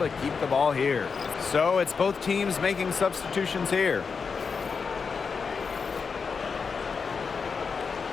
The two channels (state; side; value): quieter; right; 5.4 dB